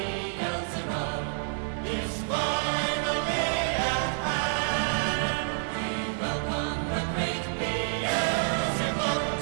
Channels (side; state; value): left; silent; 58 dB below the other